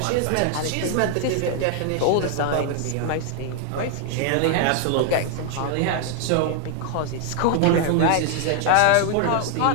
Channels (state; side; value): different; both; correlation 0.00